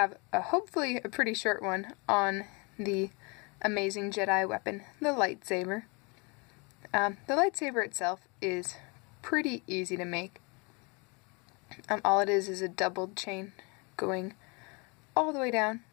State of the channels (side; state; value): right; quieter; 30.4 dB